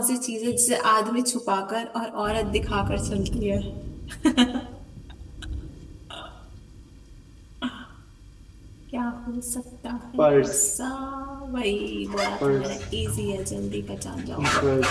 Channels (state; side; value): identical; both; correlation 1.00